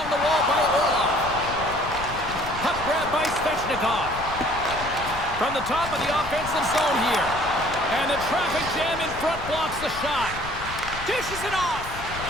the wall by Orlov. Puck grab by Svechnikov. From the top of the offensive zone here. And the traffic jam in front blocks the shot. Dishes it off.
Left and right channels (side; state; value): left; noise; rumble, 12 dB below the sound